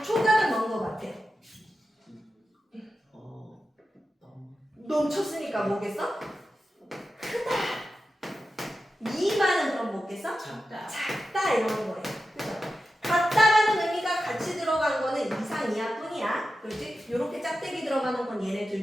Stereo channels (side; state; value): both; normal; correlation 0.91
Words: 초가는 뭔 거 같아? 넘쳤으니까 뭐겠어? 크다. 미만은 그럼 뭐겠어? 작다. 작다 이러는 거예요. 그죠? 같다라는 의미가 같이 들어간 거는 이상 이하뿐이야. 그렇지? 요렇게 짝대기 들어가는 건 얘네